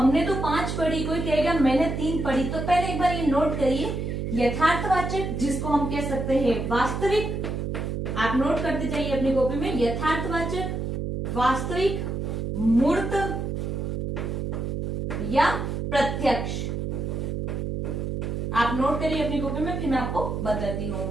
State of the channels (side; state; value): right; noise; hum, 3 dB below the sound